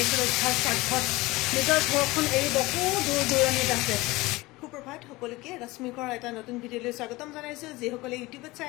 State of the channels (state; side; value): quieter; right; 21.0 dB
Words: ৰক্ষাৰ স্বাৰ্থত নিজৰ ঘৰখন এৰি বহু দূৰ দূৰণিত আছে সুপ্ৰভাত সকলোকে ৰশ্মিকৰ এটা নতুন ভিডিঅ'লৈ স্বাগতম জনাইছো যিসকলে ইউটিউবত